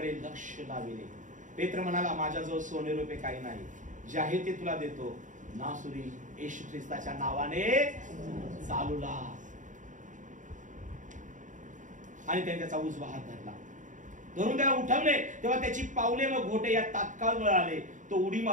लक्ष लाविले. पेत्र म्हणाला, माझ्याजवळ सोने रुपये काही नाही, जे आहे ते तुला देतो. नासुरी येशू ख्रिस्ताच्या नावाने चालू लाग. आणि त्याने त्याचा उजवा हात धरला, धरून त्याला उठवले. तेव्हा त्याची पावले व घोटे या तात्काळ वळाले. तो उडी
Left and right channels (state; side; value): late; left; 0.37 ms